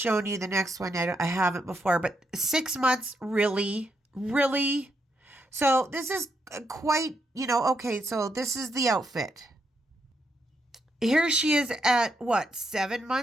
you. The next one I haven't before. But 6 months, really? Really? So this is quite, okay, so this is the outfit. Here she is at, 7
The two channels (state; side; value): normal; both; correlation 0.79